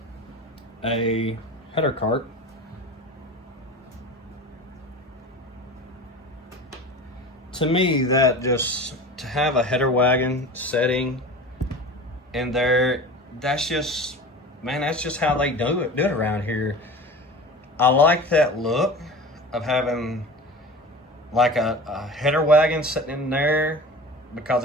a header cart, to me, that just, to have a header wagon setting in there, that's just, man, that's just how they do it around here. I like that look of having like a header wagon sitting in there, because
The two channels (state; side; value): normal; both; correlation 0.35